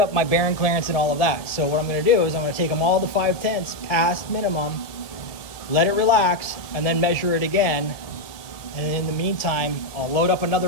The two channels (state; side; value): late; right; 1.8 ms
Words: my bearing clearance and all of that. So what I'm going to do is I'm going to take them all to 5/10 past minimum, let it relax, and then measure it again. And in the meantime, I'll load up another